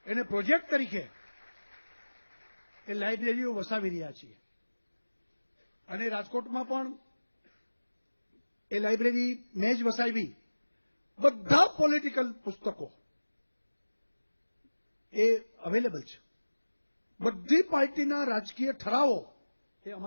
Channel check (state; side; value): inverted; both; correlation -1.00